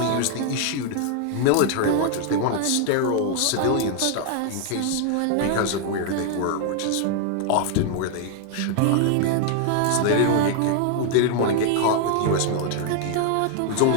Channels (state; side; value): different; both; correlation 0.00